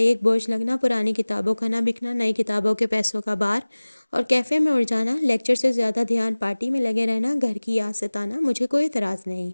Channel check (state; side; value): inverted; both; correlation -1.00